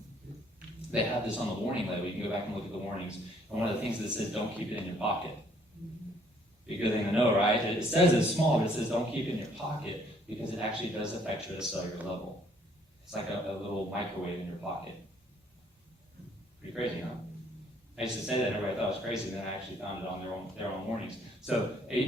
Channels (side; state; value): both; normal; correlation 0.63